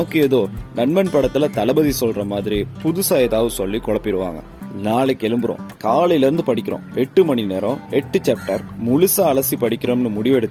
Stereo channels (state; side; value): identical; both; correlation 1.00